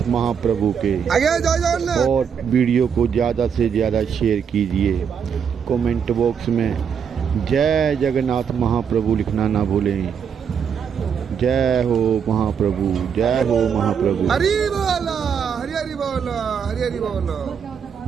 महाप्रभु के और वीडियो को ज़्यादा से ज़्यादा शेयर कीजिए। कमेंट बॉक्स में जय जगन्नाथ महाप्रभु लिखना ना भूलें। जय हो महाप्रभु, जय हो महाप्रभु। हरि बोला, हरि हरि बोला, हरि हरि बोला।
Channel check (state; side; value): quieter; left; 7.2 dB